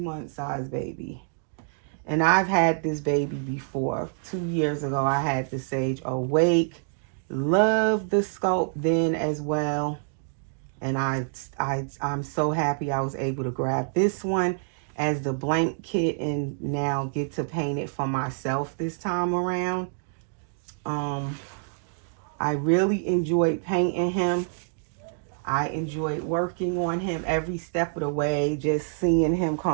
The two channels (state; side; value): silent; left; digital silence